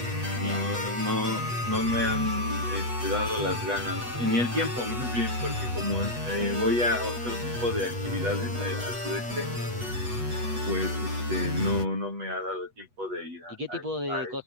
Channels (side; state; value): left; late; 8.2 ms